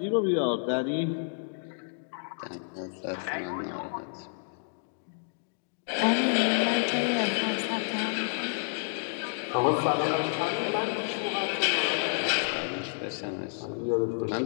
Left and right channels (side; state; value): right; silent; digital silence